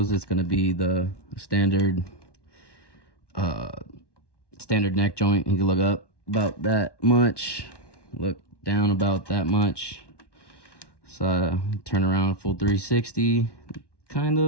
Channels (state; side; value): late; right; 1.1 ms